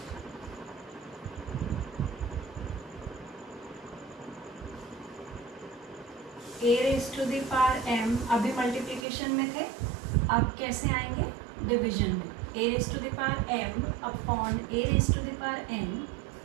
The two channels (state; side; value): drops out; left; at 9.1 s